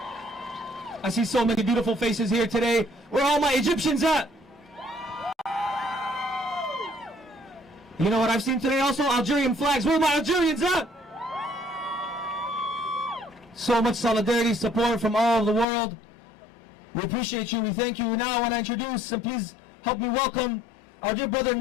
I see so many beautiful faces here today. Where are all my Egyptians at? You know what I've seen today also? Algerian flags. Where are my Algerians at? So much solidarity, support from all over the world. We appreciate you. We thank you. Now I want to introduce, and please help me welcome our dear brother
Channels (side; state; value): right; drops out; at 15.7 s